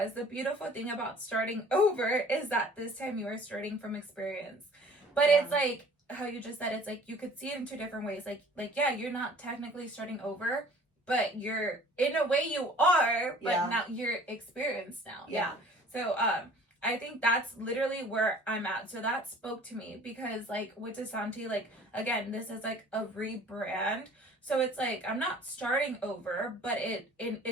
the beautiful thing about starting over is that this time you are starting from experience. But it's like how you just said, it's like you could see it in two different ways. Like yeah, you're not technically starting over, but you're, in a way you are, but Yeah. now you're experienced now. Yeah. So, I think that's literally where I'm at. So that spoke to me because, like, with Desanti, like, again, this is like a rebrand. So it's like I'm not starting over, but it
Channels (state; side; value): normal; both; correlation 0.50